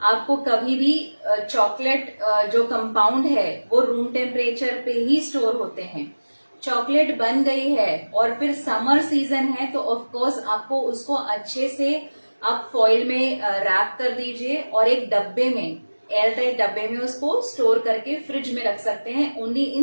कभी भी चॉकलेट जो कंपाउंड है वो रूम टेम्परेचर पे ही स्टोर होते हैं। चॉकलेट बन गई है और फिर समर सीजन है, तो ऑफ कोर्स आपको उसको अच्छे से आप फॉइल में रैप कर दीजिए और एक डब्बे में, एयर टाइट डब्बे में उसको स्टोर करके फ्रिज में रख सकते हैं। Only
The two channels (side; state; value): both; inverted; correlation -1.00